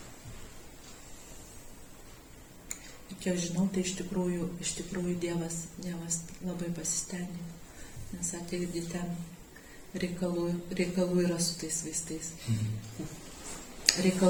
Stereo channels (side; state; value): both; identical; correlation 1.00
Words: Ir kiek žinau, tai iš tikrųjų Dievas labai pasistengė, nes ateidį ten reikalų yra su tais vaistais.